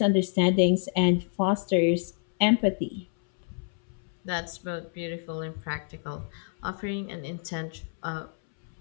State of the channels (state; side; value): silent; right; 59 dB below the other